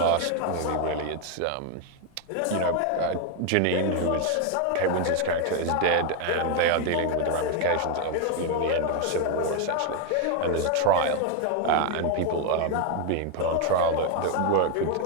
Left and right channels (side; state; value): both; different; correlation 0.01